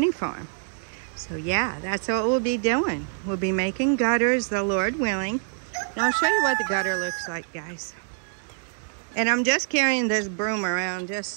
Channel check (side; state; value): left; silent; 61 dB below the other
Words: farm. So yeah, that's what we'll be doing. We'll be making gutters, the Lord willing. And I'll show you what the gutter looks like, guys. And I'm just carrying this broom around